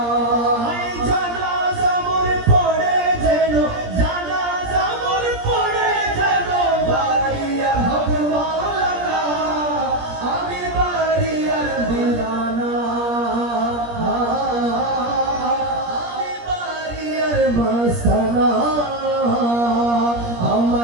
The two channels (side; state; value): left; late; 17 ms